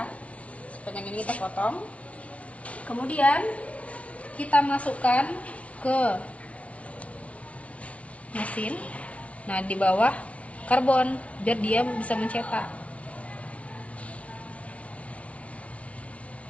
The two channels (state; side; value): late; right; 0.064 ms